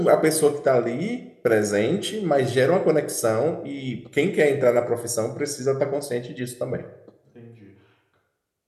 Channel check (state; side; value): identical; both; correlation 1.00